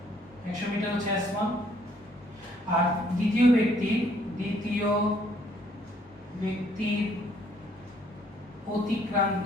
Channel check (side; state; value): both; normal; correlation 0.65